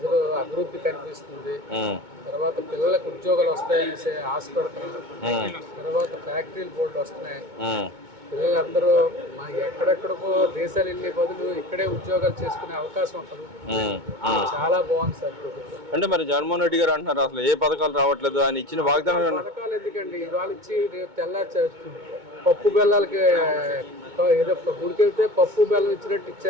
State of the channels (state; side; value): late; left; 2.2 ms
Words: అభివృద్ధి కనిపిస్తుంది. తర్వాత పిల్లలకు ఉద్యోగాలు వస్తాయని ఆశపడుతున్నారు. తర్వాత ఫ్యాక్టరీలు బోర్డులు వస్తున్నాయి. పిల్లలందరూ ఎక్కడెక్కడికో దేశాలు వెళ్ళే బదులు ఇక్కడే ఉద్యోగాలు చేసుకునే అవకాశం ఉంటుంది. చాలా బాగుంది సార్ ప్రభుత్వం. అంటే మరి జగన్మోహన్ రెడ్డి గారు అంటున్నారు అసలు ఏ పథకాలు రావట్లేదు, ఆయన ఇచ్చిన వాగ్దానం. పథకాలు ఎందుకండి, ఇవాళ ఇచ్చి రేపు పప్పు బెల్లాలకి ఏదో గుడికెళ్తే పప్పు బెల్లం ఇచ్చినట్టు